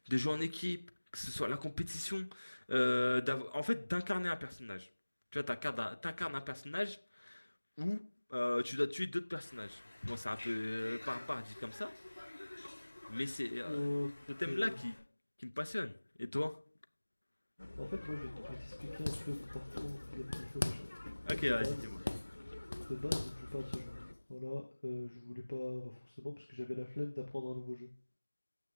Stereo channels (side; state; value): both; inverted; correlation -1.00